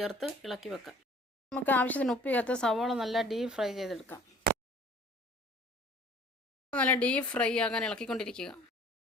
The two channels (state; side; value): normal; both; correlation 0.51